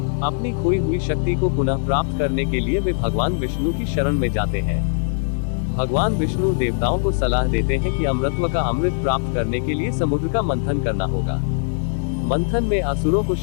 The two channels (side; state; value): right; silent; digital silence